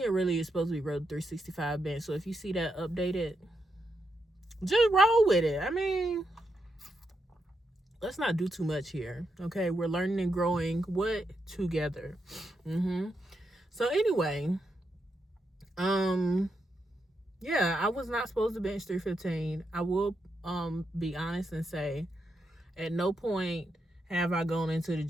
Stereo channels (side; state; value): both; normal; correlation 0.83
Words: it really is supposed to be road 365 bench. So if you see that updated, just roll with it. I mean, let's not do too much here. Okay, we're learning and growing together. So anyway, yeah, I was not supposed to bench 315. I will be honest and say at no point have I gone into the